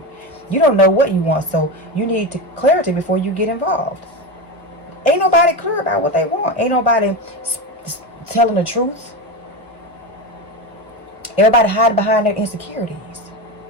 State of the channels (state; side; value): normal; both; correlation 0.19